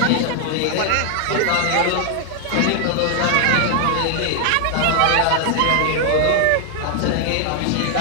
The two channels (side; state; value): both; different; correlation 0.00